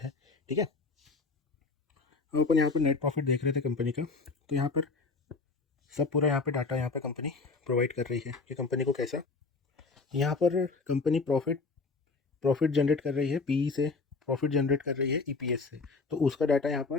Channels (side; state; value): right; quieter; 4.2 dB